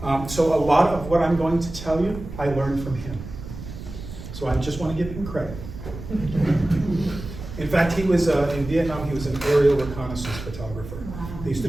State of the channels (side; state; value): right; noise; rumble, 11 dB below the sound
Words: So a lot of what I'm going to tell you, I learned from him. So I just want to give him credit. In fact, he was, in Vietnam, he was an aerial reconnaissance photographer. They used to